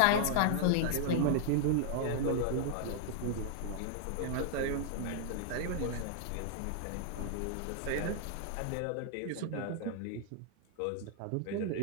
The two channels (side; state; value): both; different; correlation -0.01